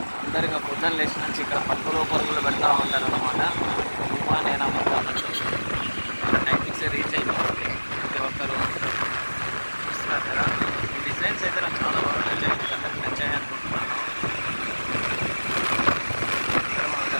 అందరిగా పొద్దున్న లేచి నుంచి ఇక్కడ పరుగులు పెడతా ఉంటారు అనమాట. నేను అమ్ముతానంటే టైమింగ్స్ రీచ్ అయిపోతుంది ప్రతి ఒక్కరు. చూస్తున్నారు కదా, ఈ డిజైన్స్ అయితే నాకు చాలా బాగా నచ్చాయి. అందరికి నచ్చాయి అనుకుంటున్నాను. ఇక్కడ మన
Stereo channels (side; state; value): both; inverted; correlation -1.00